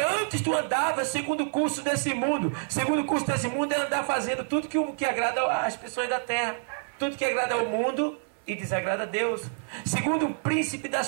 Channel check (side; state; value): left; silent; 57 dB below the other